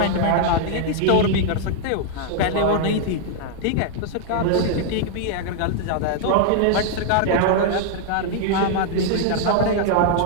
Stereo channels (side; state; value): both; different; correlation -0.01